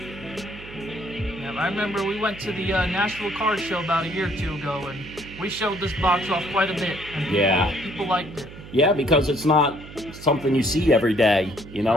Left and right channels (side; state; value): right; noise; hum, 15 dB below the sound